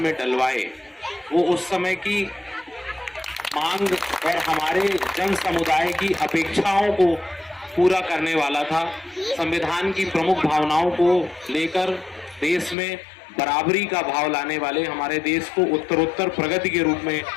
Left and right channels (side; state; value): right; drops out; at 12.8 s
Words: डलवाए, वो उस समय की मांग और हमारे जन समुदाय की अपेक्षाओं को पूरा करने वाला था। संविधान की प्रमुख भावनाओं को लेकर देश में बराबरी का भाव लाने वाले, हमारे देश को उत्तरोत्तर प्रगति के रूप में